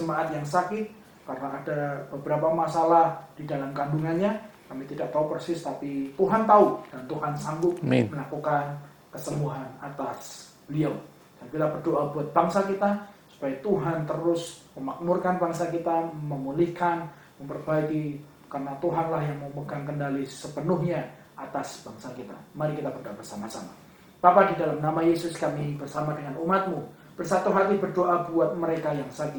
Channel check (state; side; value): identical; both; correlation 1.00